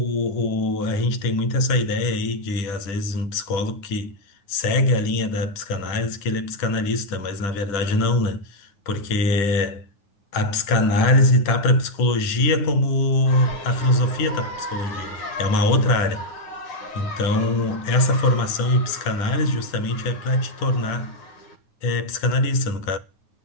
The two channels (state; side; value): late; right; 9.5 ms